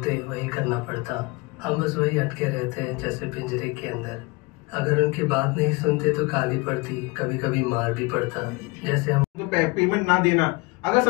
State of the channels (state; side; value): quieter; right; 25.1 dB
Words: वही करना पड़ता। हम बस वही अटके रहते हैं जैसे पिंजरे के अंदर। अगर उनकी बात नहीं सुनते तो गाली पड़ती, कभी कभी मार भी पड़ता। जैसे हम पेमेंट ना देना, अगर